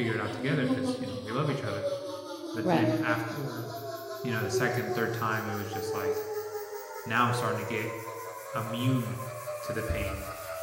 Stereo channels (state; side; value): identical; both; correlation 1.00